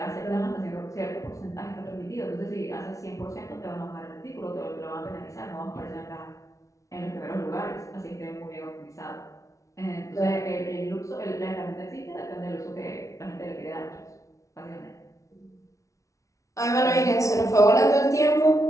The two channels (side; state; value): right; late; 0.15 ms